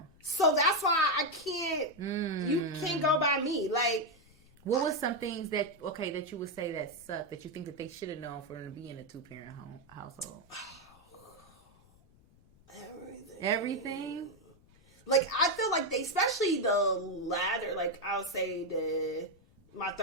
So that's why I can't. You can't go by me. Like, what was some things that you would say that sucked that you think that they should have known for them to be in a 2-parent household? Everything. Like, I feel like they, especially the latter, like, I'll say my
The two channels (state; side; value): noise; left; rumble, 28 dB below the sound